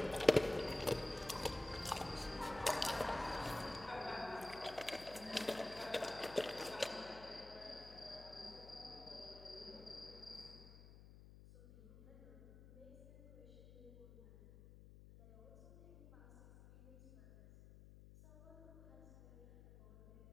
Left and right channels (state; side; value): noise; left; hum, 17 dB below the sound